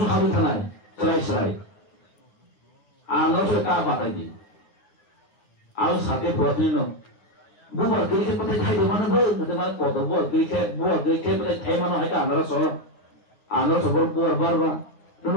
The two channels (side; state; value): right; late; 9.7 ms